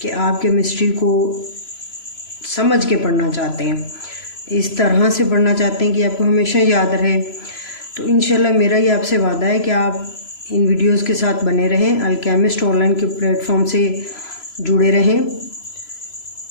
कि आप केमिस्ट्री को समझ के पढ़ना चाहते हैं, इस तरह से पढ़ना चाहते हैं कि आपको हमेशा याद रहे, तो इंशाल्लाह मेरा ये आपसे वादा है कि आप इन वीडियोस के साथ बने रहें, अल्केमिस्ट ऑनलाइन के प्लेटफॉर्म से जुड़े रहें।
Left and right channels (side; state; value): right; late; 3.0 ms